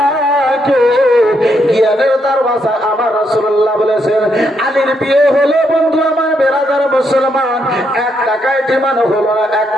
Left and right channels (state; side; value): normal; both; correlation 0.77